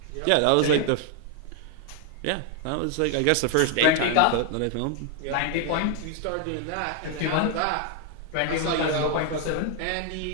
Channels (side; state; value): both; different; correlation 0.00